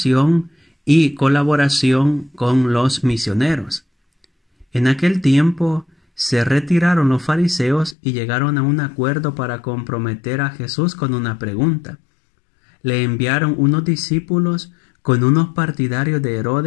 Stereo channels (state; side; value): drops out; right; at 8.0 s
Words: y colaboración con los misioneros. En aquel tiempo se retiraron los fariseos y llegaron a un acuerdo para comprometer a Jesús con una pregunta. Le enviaron unos discípulos con unos partidarios de